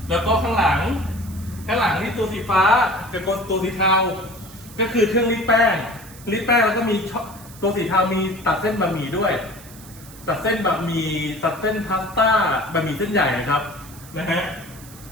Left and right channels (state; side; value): noise; right; hiss, 19 dB below the sound